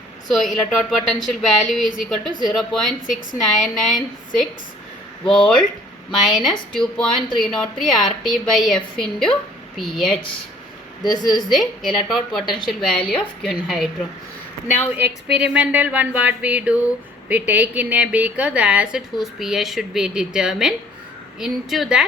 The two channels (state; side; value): normal; both; correlation 0.56